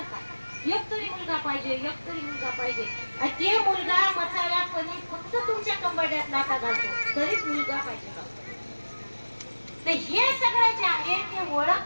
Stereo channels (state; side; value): inverted; both; correlation -1.00